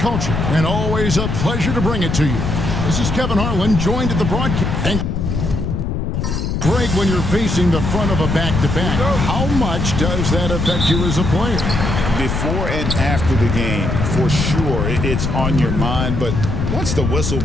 and always a pleasure to bring it to you. This is Kevin Harlan, joined at the broadcast. And break when you're facing the front of a back-to-back. How much does that affect you as a player? Before and after the game, for sure, it's on your mind, but once the whistle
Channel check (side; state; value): left; noise; rumble, 1 dB below the sound